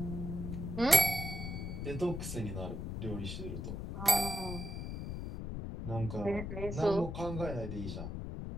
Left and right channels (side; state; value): left; noise; rumble, 5 dB below the sound